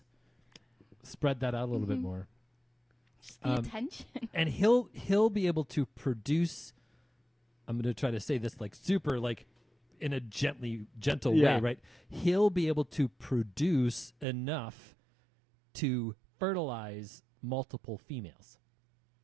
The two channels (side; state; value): left; drops out; at 14.2 s